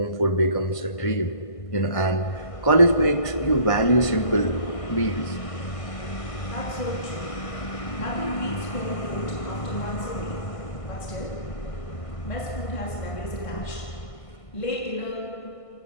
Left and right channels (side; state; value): right; late; 1.5 ms